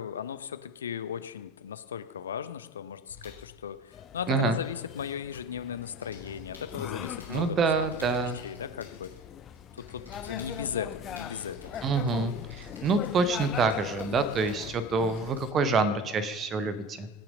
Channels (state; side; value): normal; both; correlation 0.33